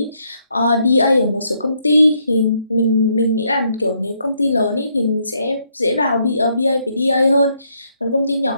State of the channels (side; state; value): both; inverted; correlation -0.74